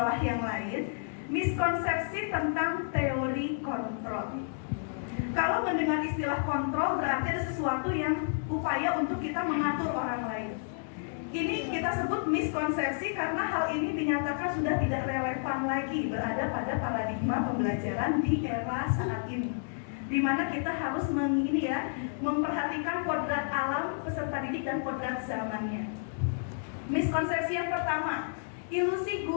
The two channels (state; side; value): silent; right; digital silence